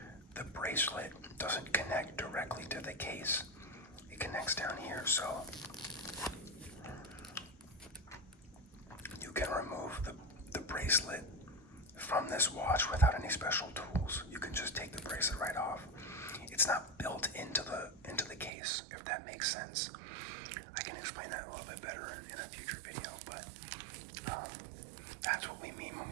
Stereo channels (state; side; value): drops out; left; at 18.5 s